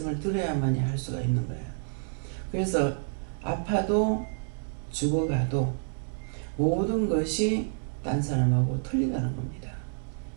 들어야만이 할 수가 있는 거예요. 그래서 아파도 죽어가도 모든 것이 딴 사람하고 틀리다는 겁니다.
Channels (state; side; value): silent; left; 59 dB below the other